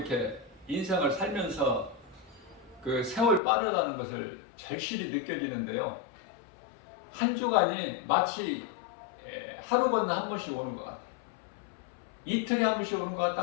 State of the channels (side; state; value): right; drops out; at 3.4 s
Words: 인생을 살면서 그 세월 빠르다는 것을 절실히 느껴지는데요. 한 주간이 마치 하루 건너 한 번씩 오는 것 같아요. 이틀에 한 번씩 오는 것